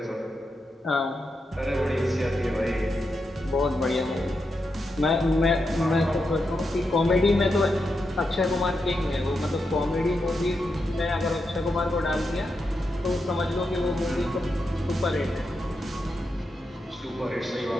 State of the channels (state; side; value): normal; both; correlation 0.86